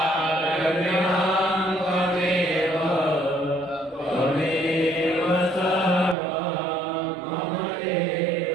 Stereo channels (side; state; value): left; drops out; at 6.2 s